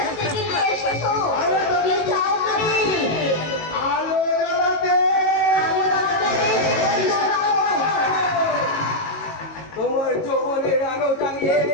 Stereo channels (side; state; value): right; late; 18 ms